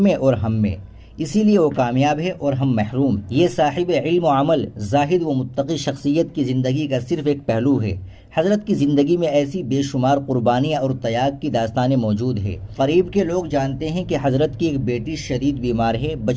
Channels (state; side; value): identical; both; correlation 1.00